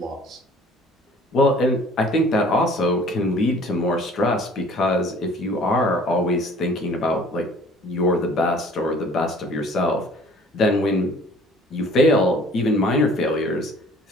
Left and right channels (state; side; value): normal; both; correlation 0.52